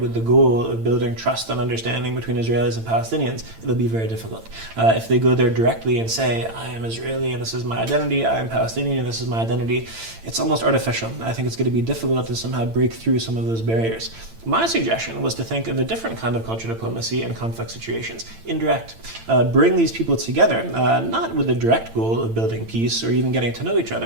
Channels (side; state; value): left; late; 8.9 ms